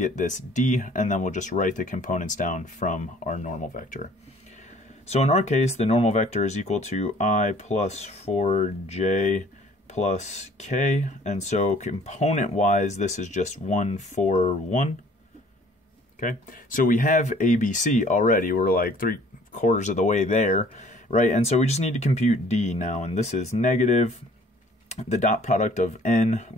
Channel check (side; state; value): both; normal; correlation 0.55